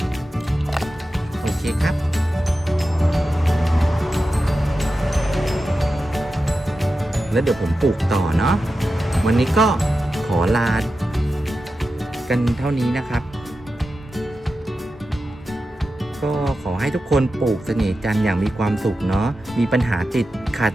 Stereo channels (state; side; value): normal; both; correlation 0.92